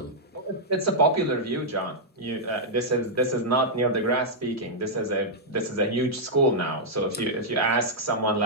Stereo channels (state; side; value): normal; both; correlation -0.07